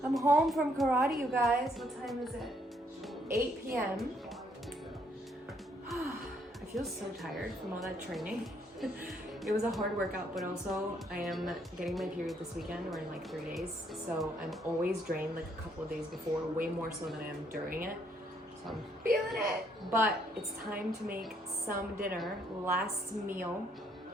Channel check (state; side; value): normal; both; correlation 0.70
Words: I'm home from karate, you guys. What time is it? 8 p.m. I feel so tired from all that training. It was a hard workout, but also I am getting my period this weekend or in like 3 days. So I'm always drained like a couple of days before, way more so than I am during it. So I'm feeling it. But it's time to make some dinner. Last meal.